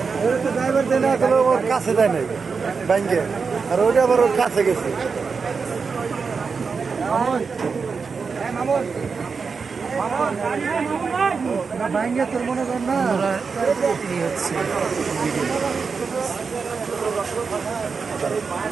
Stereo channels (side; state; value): left; quieter; 5.2 dB